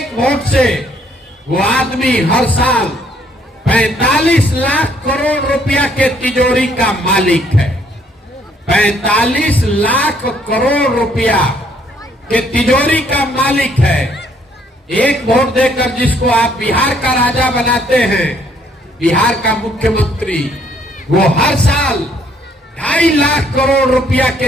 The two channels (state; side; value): normal; both; correlation 0.66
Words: वोट से वो आदमी हर साल 45 लाख करोड़ रुपया के तिजोरी का मालिक है। 45 लाख करोड़ रुपया के तिजोरी का मालिक है। एक वोट देकर जिसको आप बिहार का राजा बनाते हैं, बिहार का मुख्यमंत्री, वो हर साल 2.5 लाख करोड़ रुपया